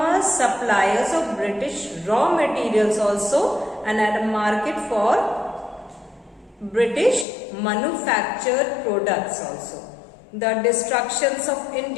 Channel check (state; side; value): drops out; right; at 7.2 s